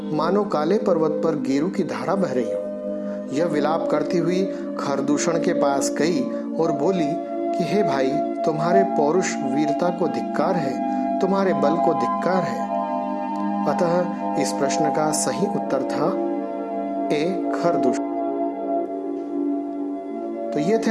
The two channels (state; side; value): identical; both; correlation 1.00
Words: मानो काले पर्वत पर गेरू की धारा बह रही हो। यह विलाप करती हुई खरदूषण के पास गई और बोली कि हे भाई, तुम्हारे पौरुष वीरता को धिक्कार है, तुम्हारे बल को धिक्कार है। अतः इस प्रश्न का सही उत्तर था ए, खरदूषण। तो ये थे